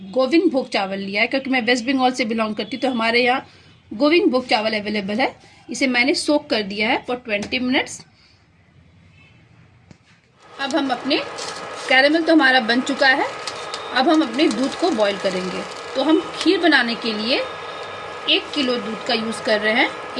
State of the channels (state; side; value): identical; both; correlation 1.00